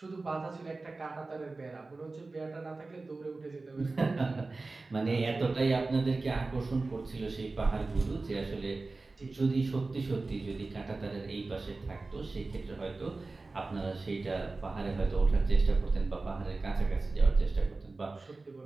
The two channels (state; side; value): quieter; left; 3.5 dB